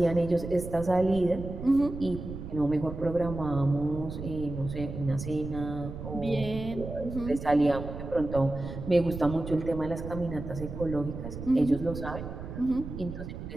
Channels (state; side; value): noise; right; rumble, 9 dB below the sound